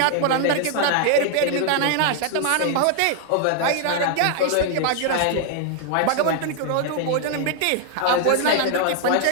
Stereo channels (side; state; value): both; different; correlation 0.00